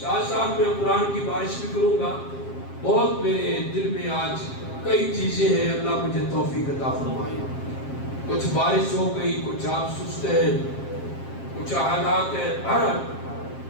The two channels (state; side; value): late; right; 7.5 ms